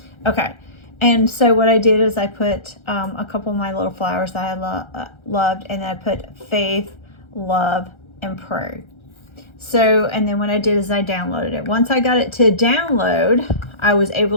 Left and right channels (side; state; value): right; late; 1.3 ms